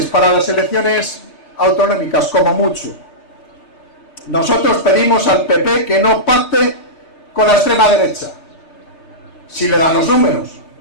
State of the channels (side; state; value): right; late; 6.6 ms